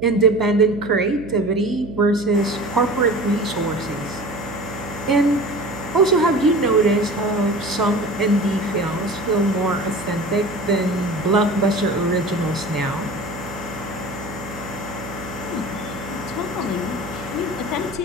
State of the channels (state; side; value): noise; right; hum, 13 dB below the sound